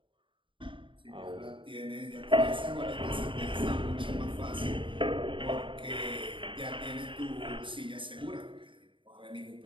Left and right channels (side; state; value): left; late; 0.24 ms